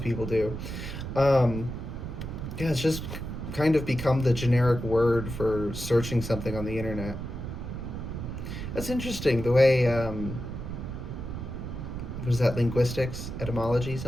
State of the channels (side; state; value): right; noise; rumble, 7 dB below the sound